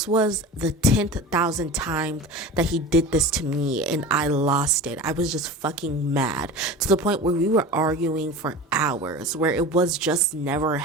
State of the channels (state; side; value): normal; both; correlation 0.33